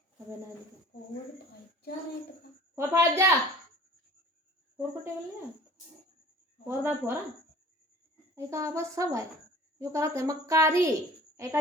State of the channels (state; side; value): normal; both; correlation 0.47